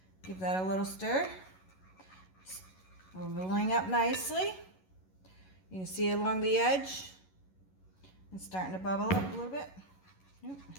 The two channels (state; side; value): late; right; 11 ms